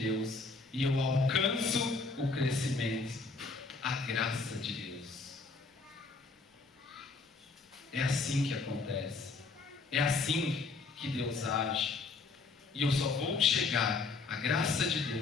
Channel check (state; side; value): quieter; right; 4.1 dB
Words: e eu alcanço o crescimento, a graça de Deus. É assim que acontece, é assim que Deus age, e eu só vou chegar à graça de